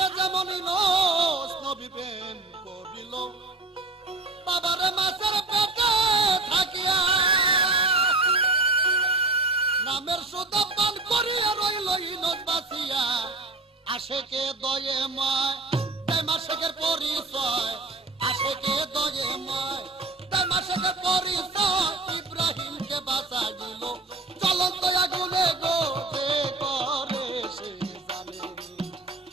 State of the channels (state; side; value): quieter; left; 3.0 dB